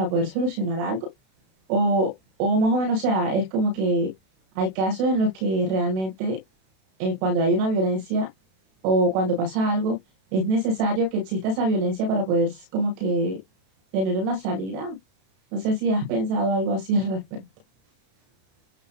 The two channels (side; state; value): left; late; 32 ms